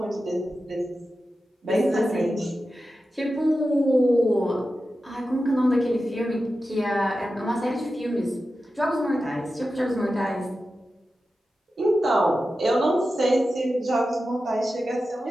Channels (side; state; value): both; normal; correlation 0.92